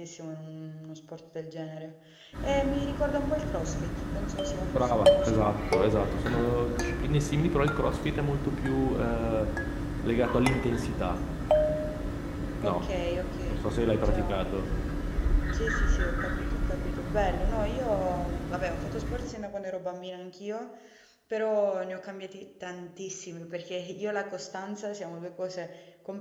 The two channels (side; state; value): both; identical; correlation 1.00